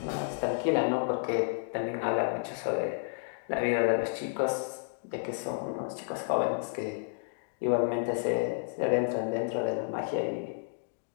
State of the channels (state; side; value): silent; right; digital silence